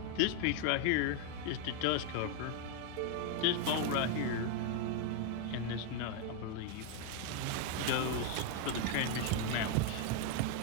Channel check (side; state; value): both; different; correlation 0.01